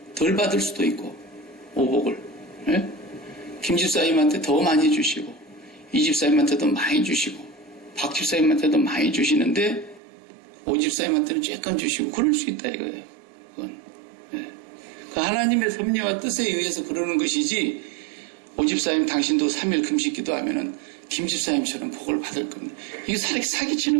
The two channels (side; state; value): left; drops out; at 10.0 s